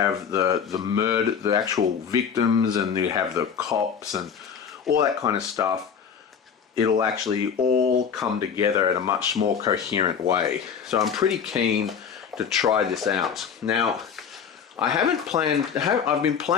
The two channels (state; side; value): quieter; right; 7.1 dB